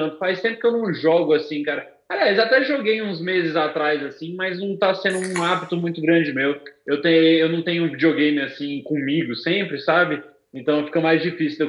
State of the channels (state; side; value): identical; both; correlation 1.00